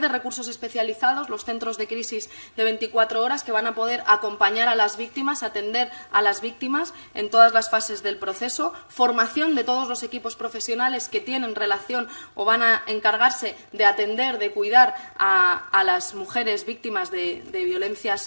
recursos especializados, los centros de crisis de 24 horas, que van a poder acompañar a las víctimas, atender a las víctimas en todas las fases del proceso, formación de todos los equipos profesionales que tienen relación o van a encargarse de atender, de cuidar a las mujeres víctimas de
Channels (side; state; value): both; inverted; correlation -1.00